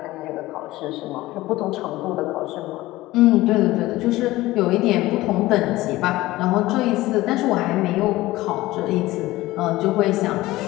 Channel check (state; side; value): quieter; right; 17.9 dB